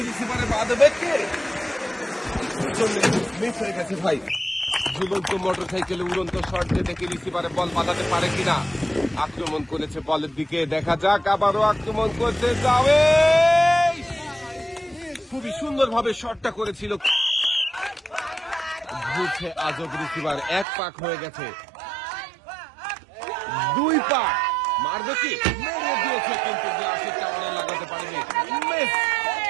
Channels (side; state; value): left; drops out; at 20.7 s